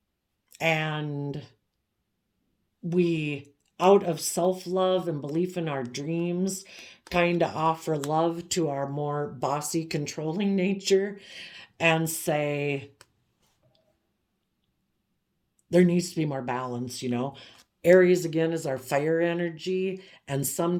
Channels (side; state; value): both; identical; correlation 1.00